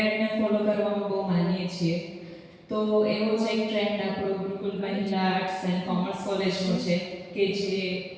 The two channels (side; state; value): both; identical; correlation 1.00